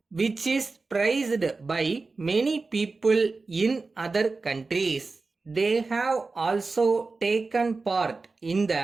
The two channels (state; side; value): quieter; left; 3.9 dB